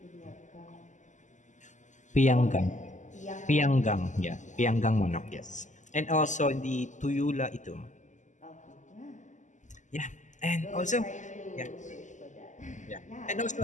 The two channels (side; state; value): right; late; 0.35 ms